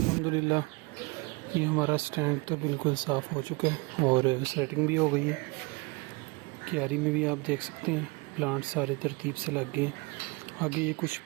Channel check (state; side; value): quieter; left; 27.5 dB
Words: ये हमारा स्टैंड तो बिल्कुल साफ़ हो चुका है, और सेटिंग भी हो गई है। क्यारी में भी आप देख सकते हैं प्लांट सारे तरतीब से लग गए। आगे ये कुछ